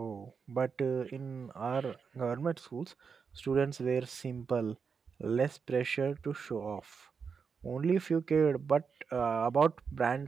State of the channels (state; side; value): quieter; left; 5.8 dB